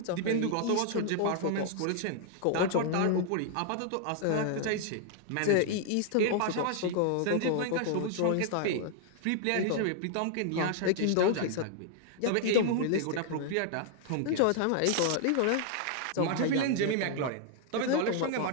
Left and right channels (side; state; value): both; different; correlation 0.00